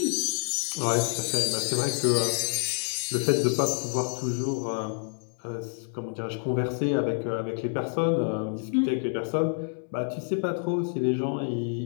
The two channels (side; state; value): right; silent; digital silence